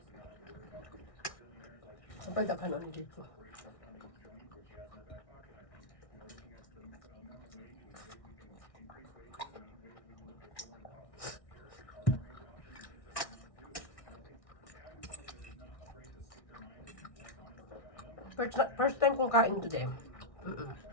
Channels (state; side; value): late; right; 1.6 ms